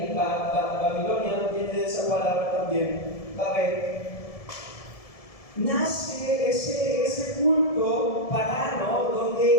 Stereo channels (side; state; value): right; late; 1.7 ms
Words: Babilonia viene de esa palabra también, Babel. Nace ese culto pagano